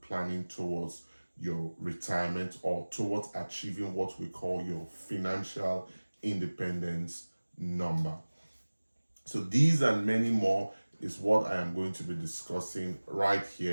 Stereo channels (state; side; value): inverted; both; correlation -1.00